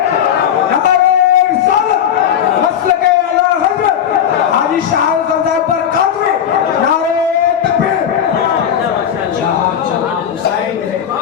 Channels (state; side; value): quieter; right; 9.0 dB